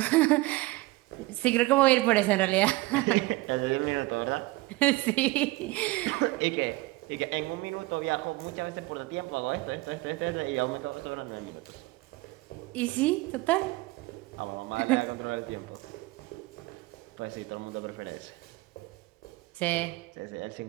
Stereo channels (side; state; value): left; quieter; 20.6 dB